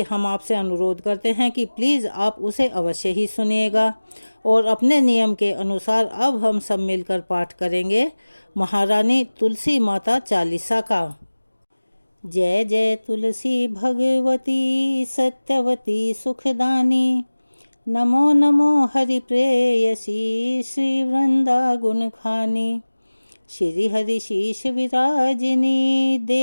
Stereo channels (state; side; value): inverted; both; correlation -1.00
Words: हम आपसे अनुरोध करते हैं कि प्लीज़ आप उसे अवश्य ही सुनिएगा। और अपने नियम के अनुसार अब हम सब मिलकर पाठ करेंगे महारानी तुलसी माता चालीसा का। जय जय तुलसी भगवती सत्यवती सुखदानी, नमो नमो हरि प्रेयसी श्री वृंदा गुण खानी। श्री हरि शीश विराजिनी